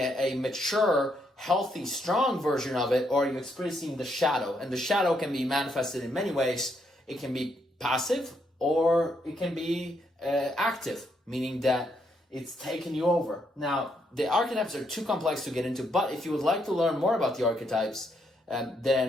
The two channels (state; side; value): normal; both; correlation 0.76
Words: mature, healthy, strong version of it, or are you experiencing the shadow? And the shadow can be manifested in many ways. It can be passive, or it can be active, meaning that it's taken you over. Now, the archetypes are too complex to get into, but if you would like to learn more about the archetypes,